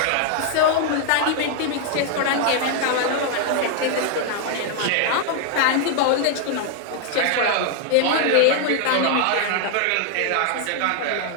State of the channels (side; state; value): both; different; correlation 0.00